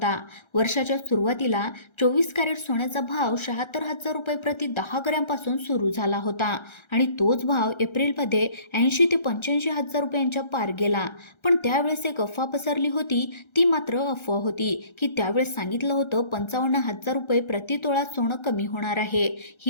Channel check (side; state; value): right; late; 1.3 ms